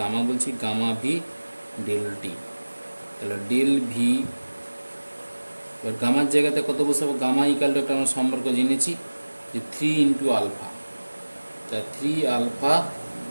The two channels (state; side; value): inverted; both; correlation -1.00